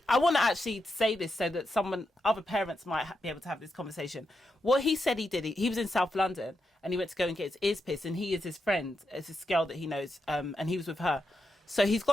I want to actually say this so that other parents might be able to have this conversation. What he said he did, he was in South London and he went to go and get his ears pierced, and he is his friend, it's this girl that he knows, and he was with her. So he's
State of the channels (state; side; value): normal; both; correlation 0.85